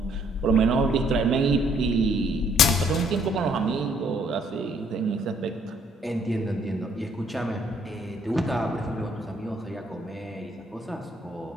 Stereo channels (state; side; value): normal; both; correlation 0.66